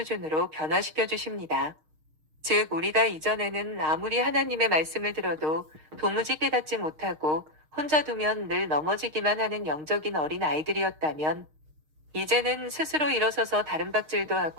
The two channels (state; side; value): late; left; 6.5 ms